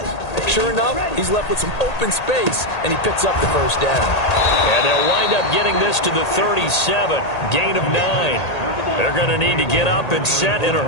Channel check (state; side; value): late; right; 1.8 ms